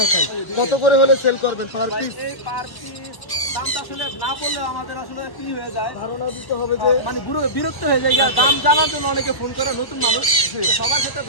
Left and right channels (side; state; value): right; late; 1.1 ms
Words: কত করে হলে সেল করবেন পার ভাই পিস? এই পার পিস দামটা আসলে না বললে আমাদের আসলে কি হয়ে যায়, ধারণা দিতে হবে যে মানে বিরক্ত হয়ে যায়। আর দাম জানার জন্য অনেকে ফোন করে, নতুন মানুষ সবার ক্ষেত্রে